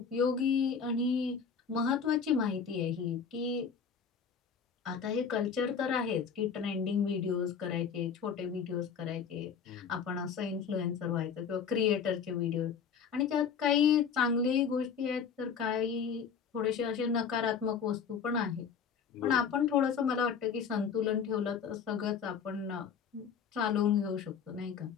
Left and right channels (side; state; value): right; quieter; 6.7 dB